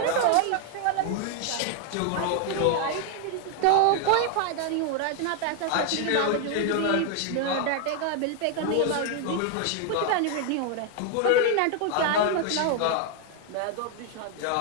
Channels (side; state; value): both; different; correlation 0.00